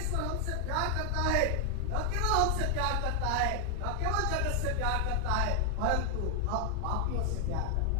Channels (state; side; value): different; both; correlation 0.01